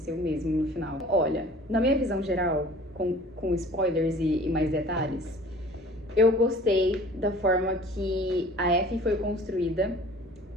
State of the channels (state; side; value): normal; both; correlation 0.48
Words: mesmo no final. Olha, na minha visão geral, com spoilers e mais detalhes, eu gostei da forma que a Effie foi construída.